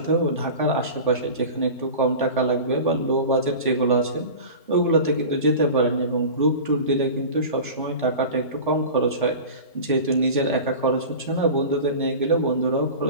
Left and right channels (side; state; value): both; inverted; correlation -0.34